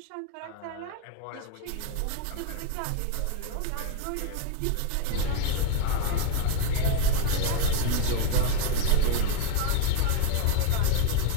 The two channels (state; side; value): different; both; correlation 0.01